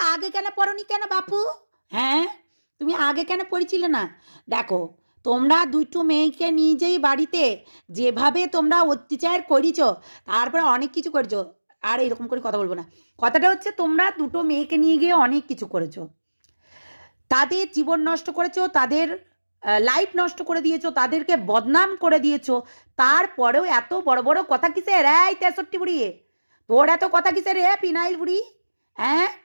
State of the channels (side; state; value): both; inverted; correlation -1.00